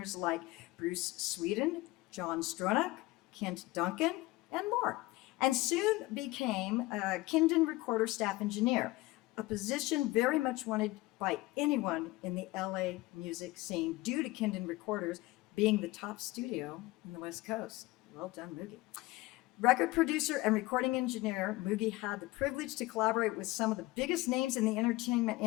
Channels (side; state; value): right; quieter; 19.8 dB